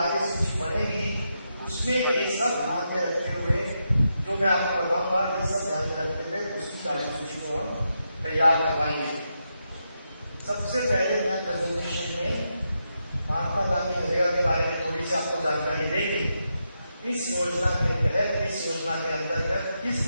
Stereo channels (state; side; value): inverted; both; correlation -0.84